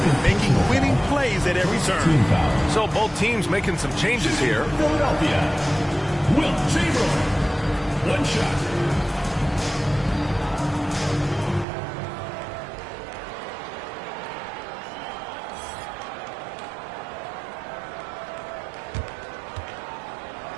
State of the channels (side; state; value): left; drops out; at 11.7 s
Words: making winning plays at every turn. So both teams making some changes here. Philadelphia, Will Chamberlain. One shot.